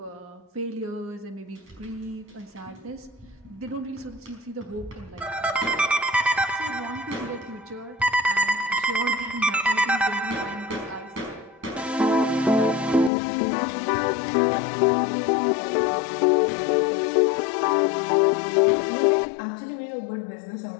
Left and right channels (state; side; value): drops out; right; at 13.1 s